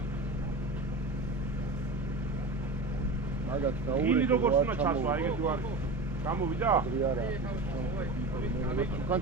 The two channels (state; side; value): quieter; left; 3.0 dB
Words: მაგათ დაურეკე. გინი როგორც უნდა ჩასვა, ეგეთი ვარ. გამოვიდა? არა.